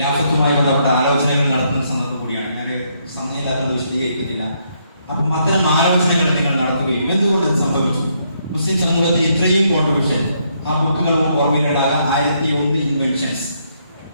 ബന്ധപ്പെട്ട ആലോചനകൾ നടത്തുന്ന സന്ദർഭം കൂടിയാണ്. ഞാൻ സമയമില്ലാത്തത് വിശദീകരിക്കുന്നില്ല. അപ്പം അത്തരം ആലോചനകൾ നിങ്ങൾ നടത്തുകയും എന്തുകൊണ്ട് ഇത് സംഭവിച്ചു, മുസ്ലിം സമൂഹത്തിൽ ഇത്രയും കോൺട്രിബ്യൂഷൻ, ആ ബുക്കുകളും ഓർമ്മയിലിടാതെ 1001 ഇൻവെൻഷൻസ്.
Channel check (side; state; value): both; inverted; correlation -0.74